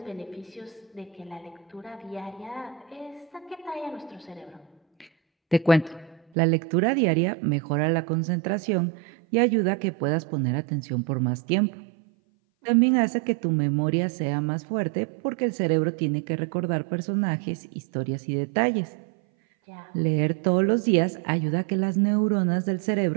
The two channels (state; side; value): drops out; left; at 6.2 s